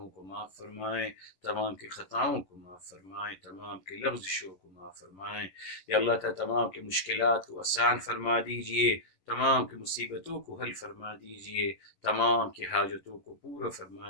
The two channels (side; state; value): right; late; 11 ms